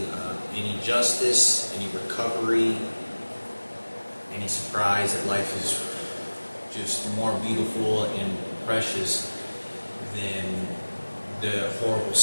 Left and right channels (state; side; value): inverted; both; correlation -1.00